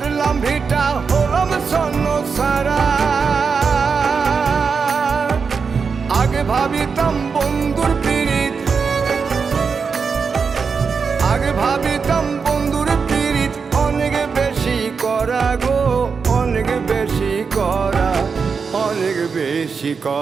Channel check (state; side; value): quieter; left; 5.5 dB